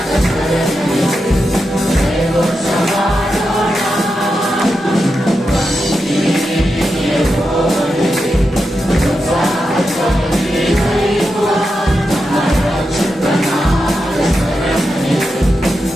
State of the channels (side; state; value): both; normal; correlation 0.88